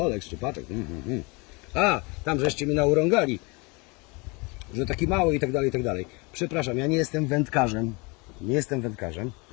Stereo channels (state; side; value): quieter; right; 28.3 dB